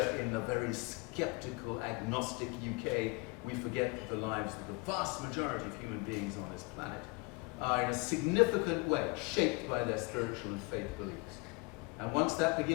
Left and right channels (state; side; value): quieter; right; 27.1 dB